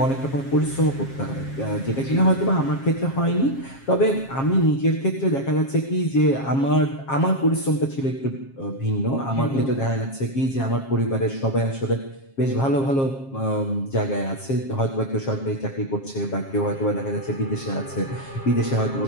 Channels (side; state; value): right; late; 7.4 ms